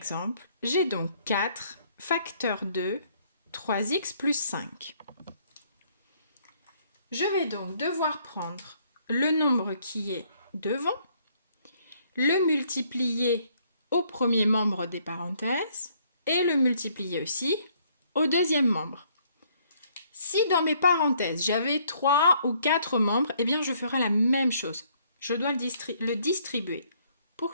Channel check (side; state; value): both; inverted; correlation -0.66